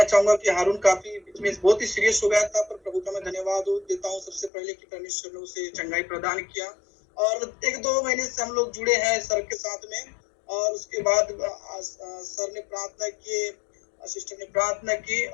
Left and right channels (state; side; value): drops out; right; at 4.5 s